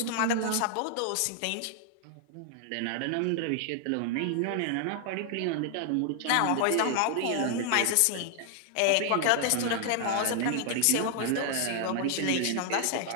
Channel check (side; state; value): both; different; correlation 0.00